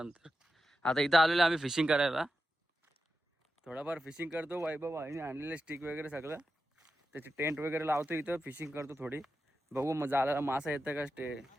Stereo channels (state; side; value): normal; both; correlation 0.90